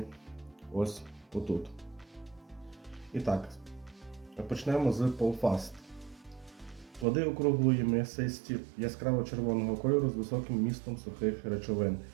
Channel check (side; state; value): left; drops out; at 7.1 s